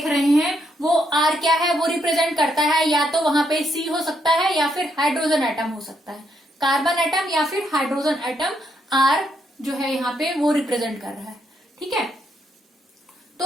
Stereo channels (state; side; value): normal; both; correlation 0.76